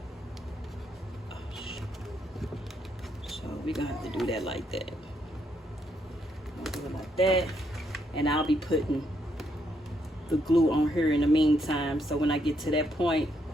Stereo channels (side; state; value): both; normal; correlation 0.75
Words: So we're going to have to do that like that. Do it like that. And I'll be putting the glue on here in the meantime. So when I get to that point,